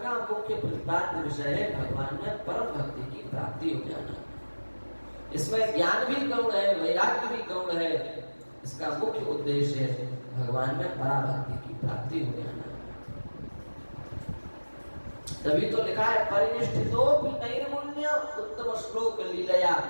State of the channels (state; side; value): inverted; both; correlation -1.00